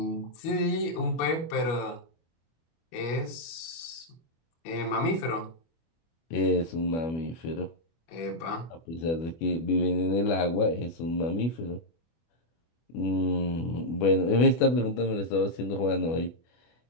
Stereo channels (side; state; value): right; late; 24 ms